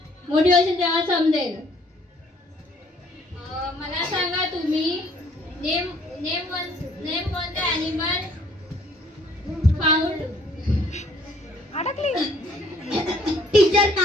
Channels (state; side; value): normal; both; correlation 0.61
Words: मोठी होशील तेव्हा समजेल. मला सांगा तुम्ही name one the animal found. Teacher,